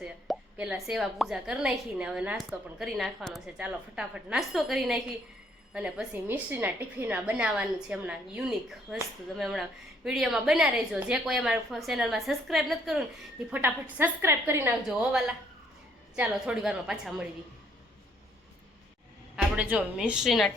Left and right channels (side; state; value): both; normal; correlation 0.66